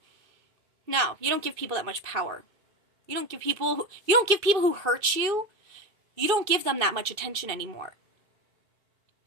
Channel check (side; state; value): left; late; 2.5 ms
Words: No, you don't give people that much power. You don't give people who hurt you, you don't give them that much attention anymore.